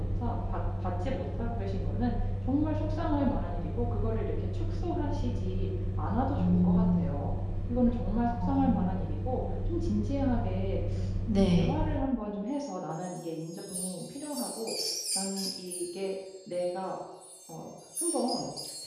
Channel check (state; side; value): identical; both; correlation 1.00